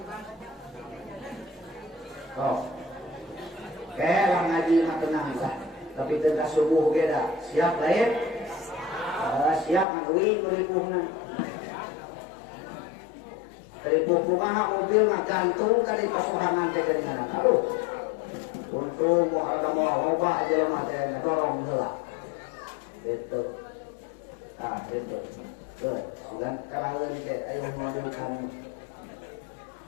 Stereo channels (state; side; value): drops out; right; at 9.9 s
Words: Oh, lah ngaji mah tenang lah. Tapi tengah subuh ge da. Siap lain? Siap ngaduin meripuhna. Ripuh kumaha mobil ngagantung kali pasuhangan teh jaringan. Aduh. Untung mau ada mau loba aja lemah teh dorong heula. Gitu. Gitu. Tuh, sugan karaeun ge aya mobil kan.